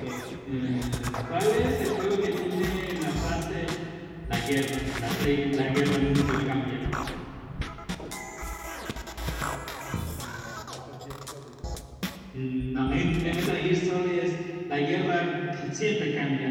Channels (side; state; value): both; identical; correlation 1.00